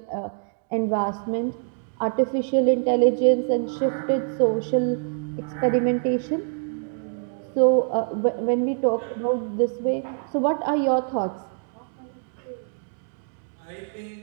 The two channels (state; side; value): silent; left; digital silence